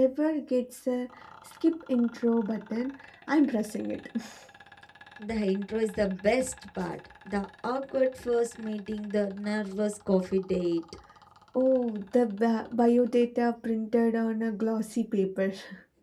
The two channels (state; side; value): identical; both; correlation 1.00